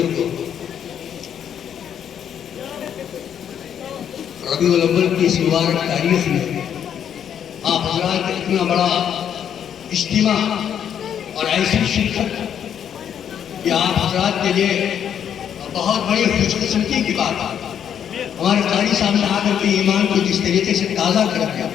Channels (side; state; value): right; quieter; 8.9 dB